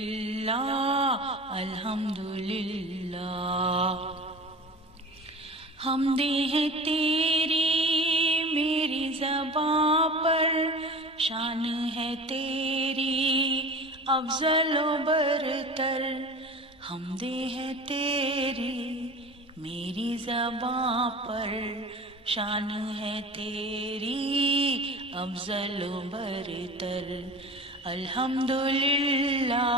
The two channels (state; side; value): normal; both; correlation 0.36